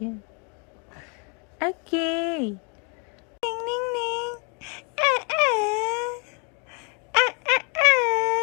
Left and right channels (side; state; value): right; quieter; 36.2 dB